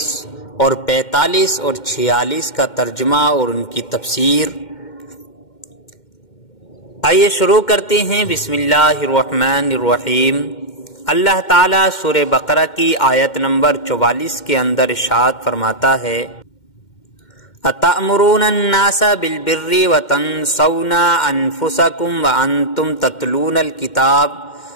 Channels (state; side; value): late; right; 2.1 ms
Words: اور 45 اور 46 کا ترجمہ اور ان کی تفسیر۔ آئیے شروع کرتے ہیں۔ بسم اللہ الرحمن الرحیم۔ اللہ تعالیٰ سورہ بقرہ کی آیت نمبر 44 کے اندر ارشاد فرماتا ہے، أَتَأْمُرُونَ النَّاسَ بِالْبِرِّ وَتَنْسَوْنَ أَنفُسَكُمْ وَأَنْتُمْ تَتْلُونَ الْكِتَابَ